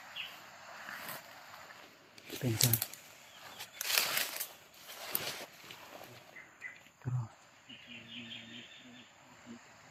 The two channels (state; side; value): identical; both; correlation 1.00